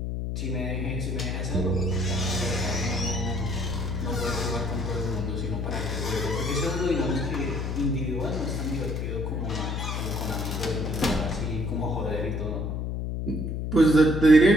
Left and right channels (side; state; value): left; noise; hum, 2 dB below the sound